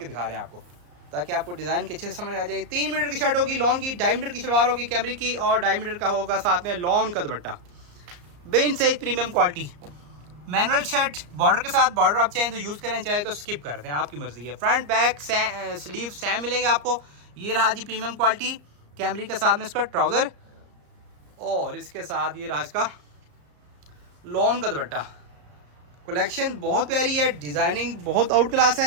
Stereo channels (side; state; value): left; late; 34 ms